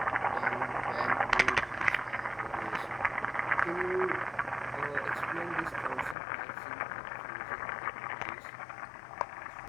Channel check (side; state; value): right; drops out; at 6.2 s